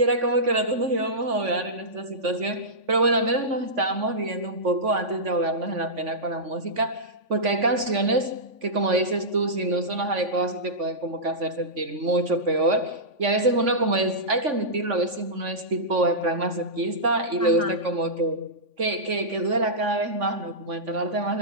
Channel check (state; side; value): late; left; 3.5 ms